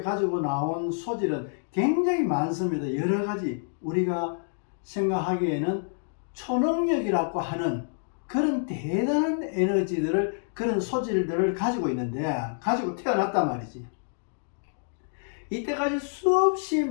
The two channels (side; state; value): right; silent; digital silence